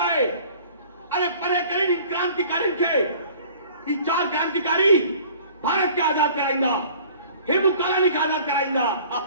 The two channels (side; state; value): both; inverted; correlation -0.49